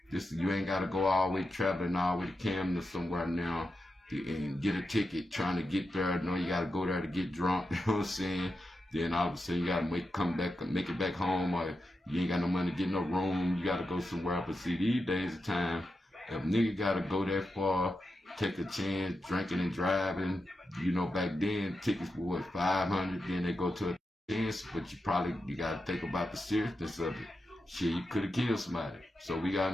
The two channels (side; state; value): both; normal; correlation 0.89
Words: Just, you ain't gotta go all the way traveling all the way to Camden or somewhere now and get a ticket trying to get there. No, you gotta go there to get drunk. You know what I'm saying? Then all of a sudden you gotta make it back home, or you ain't got no money to get no room. You gotta go somewhere else. But see, these days of time, if nigga gotta go that far, take a chance, drinking and driving. You know, back then tickets were what, 500. Then they go to a chance, but you gotta think about the seriousness of it. Shit, you could have killed somebody. So we